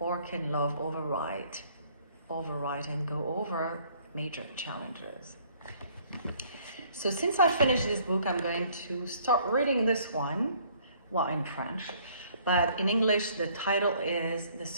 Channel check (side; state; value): both; inverted; correlation -0.60